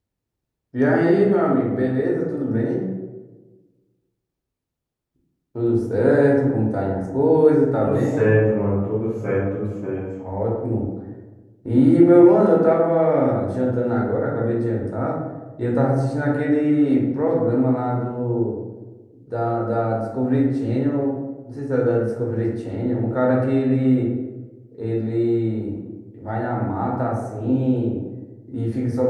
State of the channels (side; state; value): both; identical; correlation 1.00